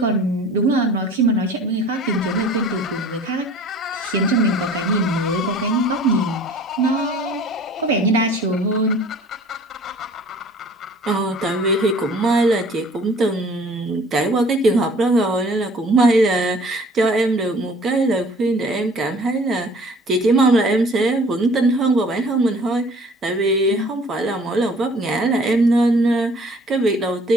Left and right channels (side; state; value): both; normal; correlation 0.51